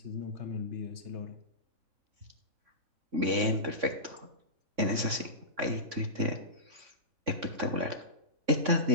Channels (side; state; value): left; late; 3.6 ms